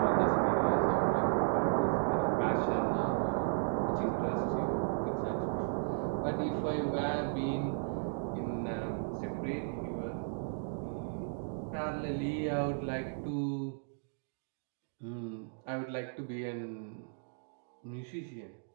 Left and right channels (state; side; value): silent; left; digital silence